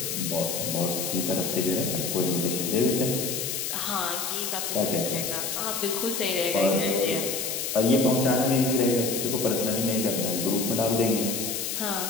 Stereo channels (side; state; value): left; noise; hiss, 2 dB below the sound